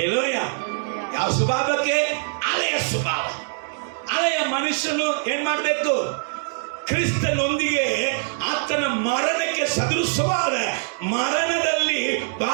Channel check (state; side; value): silent; left; 63 dB below the other